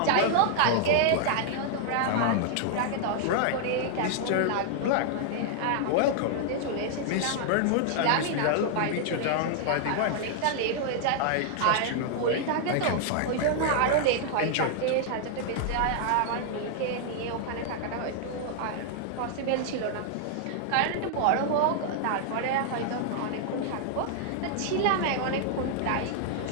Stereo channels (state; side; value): different; both; correlation 0.00